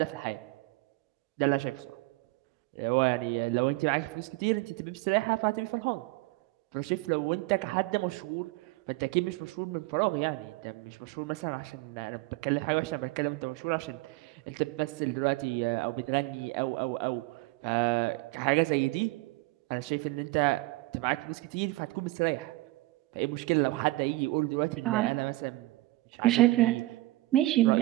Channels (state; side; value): quieter; left; 19.8 dB